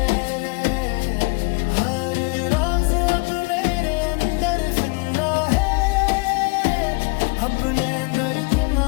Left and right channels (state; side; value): quieter; right; 29.6 dB